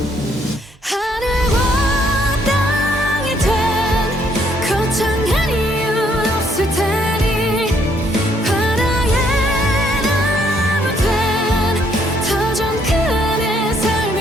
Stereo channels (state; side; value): normal; both; correlation 0.69